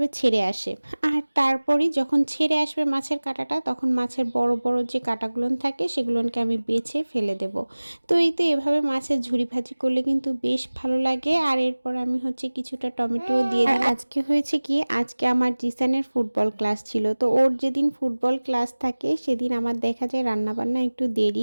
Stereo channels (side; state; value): both; inverted; correlation -1.00